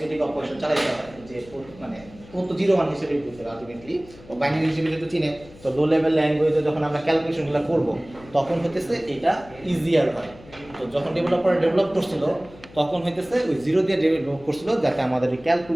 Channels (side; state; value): left; noise; hum, 21 dB below the sound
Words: অপারেশন চালাইতে হয় যে মানে ও তো 0 1 হিসেবেই বুঝতে আলটিমেটলি ও বাইনারি হিসেবে যেহেতু চিনে তো লো লেভেল ল্যাঙ্গুয়েজে যখন আমরা ক্যালকুলেশনগুলো করব তখন হতেছে এটা ইজিয়ার হয় তো যখন ডেভেলপার ডেভেলপ করছিল তখন হইতেছে ওই 0 দিয়ে ডেভেলপ করছিল যাতে আমাদের এই